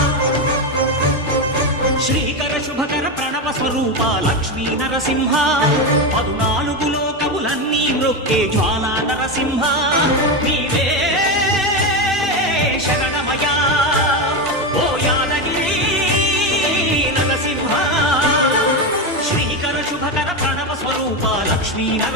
శ్రీకర శుభకర ప్రణవ స్వరూప లక్ష్మీ నరసింహ 14 లోకములన్నీ మ్రొక్కే జ్వాలా నరసింహ నీవే శరణమయా ఓ యాదగిరి నరసింహ శ్రీకర శుభకర ప్రణవ స్వరూప లక్ష్మీ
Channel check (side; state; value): both; normal; correlation 0.13